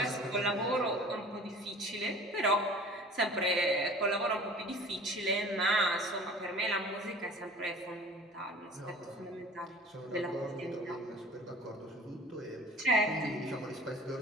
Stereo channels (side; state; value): both; normal; correlation 0.45